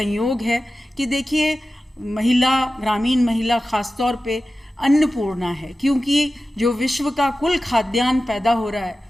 है कि देखिए, ग्रामीण महिला खासतौर पे अन्नपूर्णा है, क्योंकि जो विश्व का कुल खाद्यान्न पैदा हो रहा है,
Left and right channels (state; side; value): normal; both; correlation 0.94